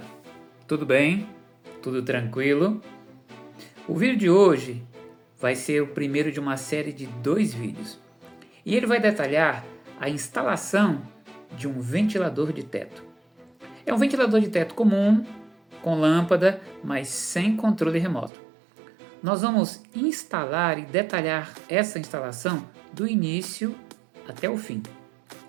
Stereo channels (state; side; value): drops out; left; at 18.3 s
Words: tudo bem? Tudo tranquilo? O vídeo de hoje vai ser o primeiro de uma série de 2 vídeos e ele vai detalhar a instalação de um ventilador de teto. É um ventilador de teto comum, com lâmpada, mas sem controle remoto. Nós vamos instalar e detalhar essa instalação do início até o fim.